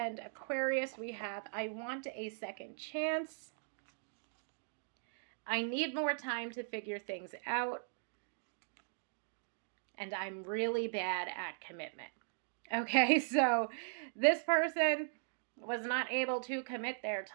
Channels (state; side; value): silent; left; digital silence